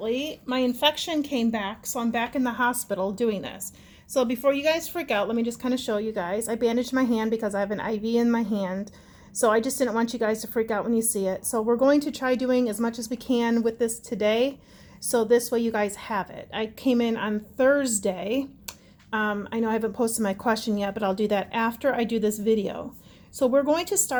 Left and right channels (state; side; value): identical; both; correlation 1.00